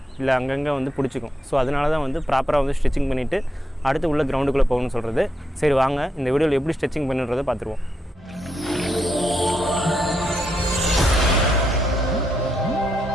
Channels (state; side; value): normal; both; correlation 0.81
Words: இல்லை அங்கங்கே வந்து பிடிச்சிக்கும். ஸோ அதனால தான் வந்து ப்ராப்பராக வந்து ஸ்ட்ரெச்சிங் பண்ணிவிட்டு அடுத்து உள்ள கிரவுண்டுக்குள்ளே போகணும்னு சொல்கிறது. சரி வாங்க இந்த வீடியோவில் எப்படி ஸ்ட்ரெச்சிங் பண்ணுறதை பார்த்துருவோம்.